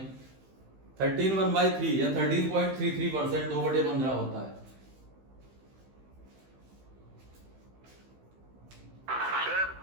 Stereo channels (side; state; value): left; late; 15 ms